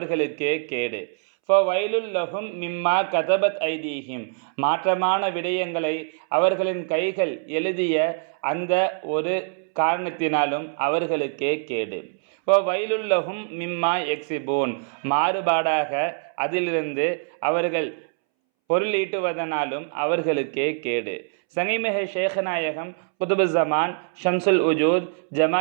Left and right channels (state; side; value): silent; left; 63 dB below the other